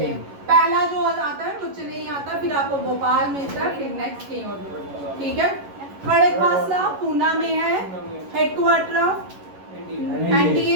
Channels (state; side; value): late; left; 11 ms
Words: पहला जो आता है वो चेन्नई आता है, फिर आपको भोपाल मिलता है, फिर नेक्स्ट कहीं और। ठीक है, खड़गवासला पूना में है headquarter of